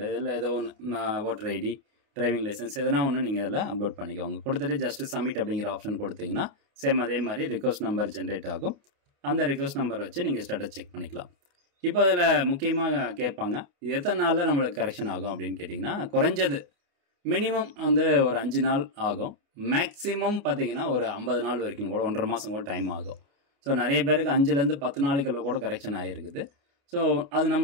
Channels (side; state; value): left; late; 29 ms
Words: இதில் ஏதோ ஒன்று ஓட்டர் ஐடி, டிரைவிங் லைசன்ஸ் எதனா ஒன்று நீங்கள் இதில் அப்லோட் பண்ணிக்கோங்க. கொடுத்துட்டு ஜஸ்ட் சப்மிட் அப்படிங்கிற ஆப்ஷன் கொடுத்தீங்கன்னா சேம் அதே மாதிரி ரிக்வெஸ்ட் நம்பர் ஜென்ரேட் ஆகும். அந்த ரிக்வெஸ்ட் நம்பர் வச்சு நீங்கள் ஸ்டேட்டஸ் செக் பண்ணிக்கலாம். இப்போ அதில் முக்கியமாக கேட்பாங்க, இது எத்தனை நாளில் நம்மளுக்கு கரெக்ஷன் ஆகும் அப்படின்னு கேட்டிங்கன்னா, குறைஞ்சது மினிமம் வந்து ஒரு 5 நாள் ஆகும். மேக்ஸிமம் பார்த்தீங்கன்னா ஒரு 50 நாள் வரைக்கும் கூட, 1.5 மாதம் கூட டைம் ஆகும். ஸோ நிறைய பேருக்கு 5லேருந்து 10 நாளைக்குள்ள கூட கரெக்ஷன் ஆகிருக்குது. ஸோ அது